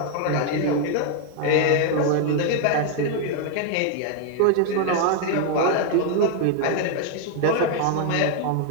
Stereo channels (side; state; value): both; different; correlation 0.00